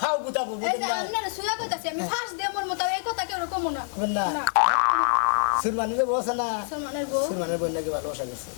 গুতাবো এই যে আপনারা সুয়া কইতাছি আমি ফাঁস দে মোর মত এই কথা কেউ কমু না না সুরমানের বউ আছে না সুরমানের বউ সুরমানের বউ নাকি ভালোবাসা গেছে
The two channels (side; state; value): right; silent; digital silence